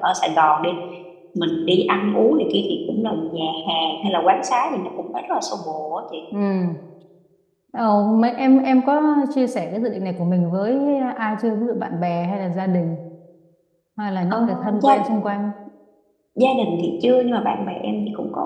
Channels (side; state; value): both; identical; correlation 1.00